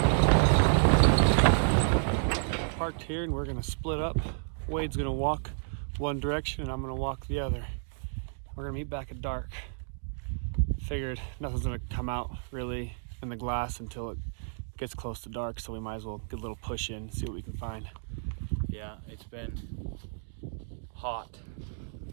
Parked here, and we're gonna split up. Wade's gonna walk one direction, and I'm gonna walk the other. We're gonna meet back at dark. Figured nothing's gonna come out really in the glass until it gets close to dark, so we might as well get a little push in, see what we can find. Yeah, it's been hot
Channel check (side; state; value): left; silent; digital silence